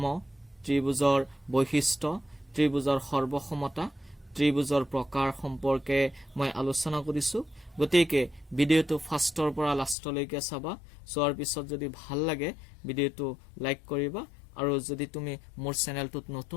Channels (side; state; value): right; drops out; at 10.0 s